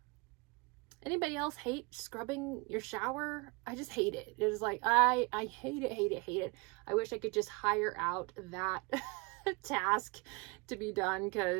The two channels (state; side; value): quieter; left; 28.6 dB